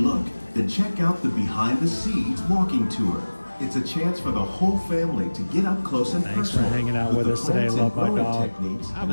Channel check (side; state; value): both; inverted; correlation -1.00